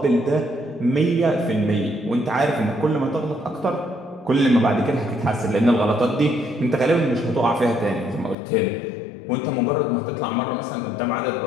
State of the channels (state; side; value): drops out; right; at 8.3 s